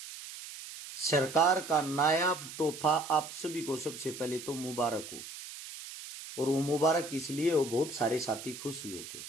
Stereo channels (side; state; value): right; noise; hiss, 12 dB below the sound